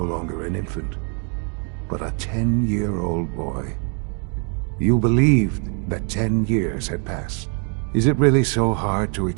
longer an infant, but a 10-year-old boy. You believed that 10 years had passed. Is it really so hard to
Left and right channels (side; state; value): left; quieter; 40.0 dB